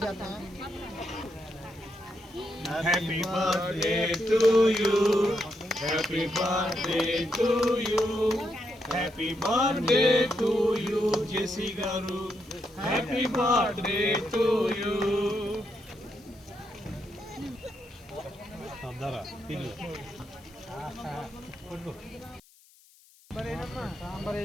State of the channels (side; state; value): left; noise; hiss, 28 dB below the sound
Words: Happy birthday to you. Happy birthday to you. Happy birthday to you, Jesse Garu. Happy birthday to you. Sambar